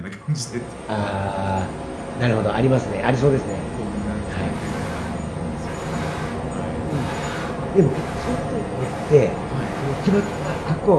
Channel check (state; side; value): identical; both; correlation 1.00